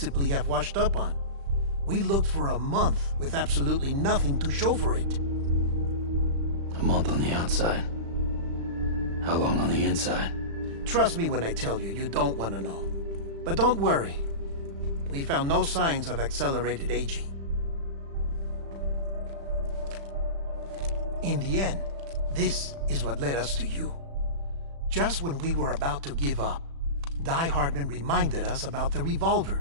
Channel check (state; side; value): late; left; 36 ms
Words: have washed up on. We looked for a month with absolutely nothing to show for it. A month on the outside. How long on the inside? Trust me when I tell you, you don't want to know. But don't worry. We found no signs of accelerated aging. In the end, this is what led us to you. Just when we were about to give up, Die Hartman reminded us about the